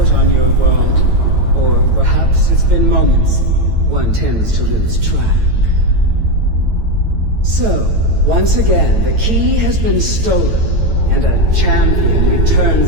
on your world. Or perhaps it's been moments. One tends to lose track. So, once again, the key has been stolen, and a champion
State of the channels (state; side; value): late; left; 9.0 ms